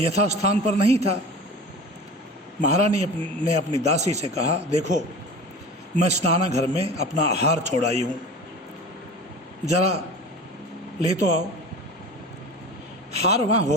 यथास्थान पर नहीं था। महारानी ने अपनी दासी से कहा, देखो मैं स्नानाघर में अपना हार छोड़ाई हूँ, जरा ले तो आओ। हार वहाँ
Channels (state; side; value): normal; both; correlation 0.36